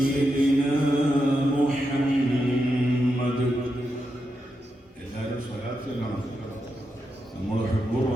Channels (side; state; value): both; normal; correlation 0.86